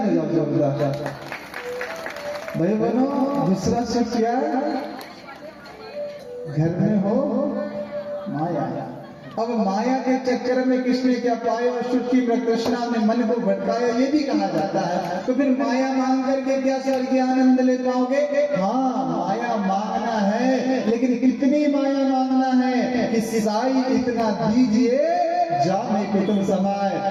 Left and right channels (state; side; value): identical; both; correlation 1.00